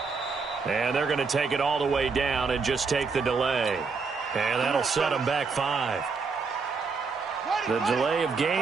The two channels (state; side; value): quieter; left; 4.8 dB